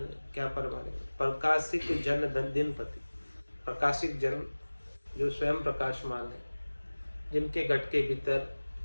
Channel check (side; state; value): both; inverted; correlation -1.00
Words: क्या परमाने, प्रकाशिक जन दिन पति, प्रकाशिक जन जो स्वयं प्रकाशमान है, जिनके घट के भीतर